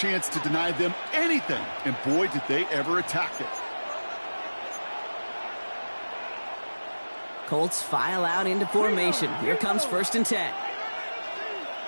to deny them anything, and boy, did they ever attack it. Colts file out into formation. Here comes 1st and 10.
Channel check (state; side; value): inverted; both; correlation -1.00